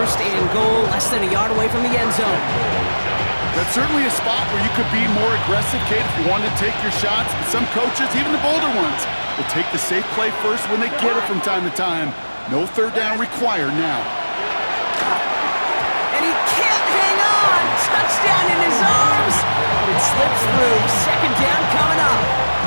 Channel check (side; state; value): both; inverted; correlation -1.00